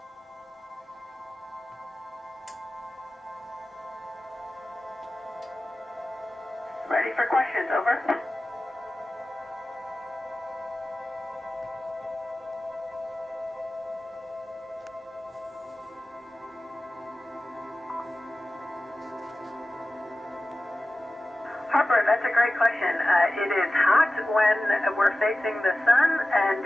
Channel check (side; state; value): both; normal; correlation 0.95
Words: Ready for questions. Over. Harper, that's a great question. It is hot when we're facing the sun, and